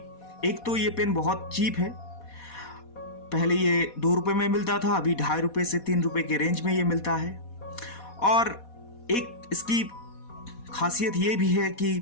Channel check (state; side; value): late; right; 4.2 ms